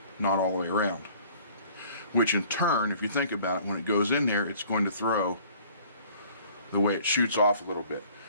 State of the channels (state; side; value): inverted; both; correlation -0.53